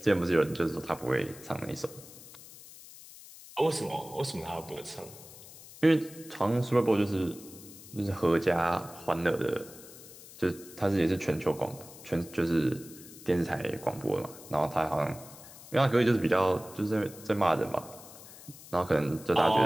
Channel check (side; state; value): left; noise; hiss, 18 dB below the sound